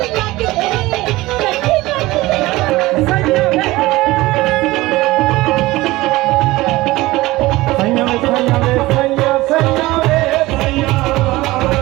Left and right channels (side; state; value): left; quieter; 19.2 dB